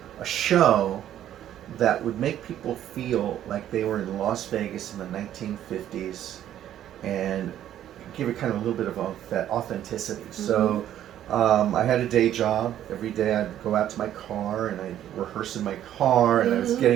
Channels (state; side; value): quieter; left; 11.4 dB